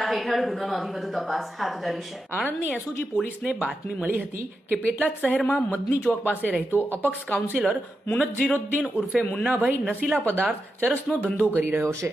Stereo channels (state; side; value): normal; both; correlation 0.88